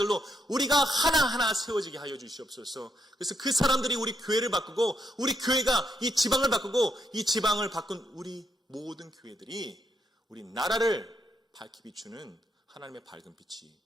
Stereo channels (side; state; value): both; normal; correlation 0.78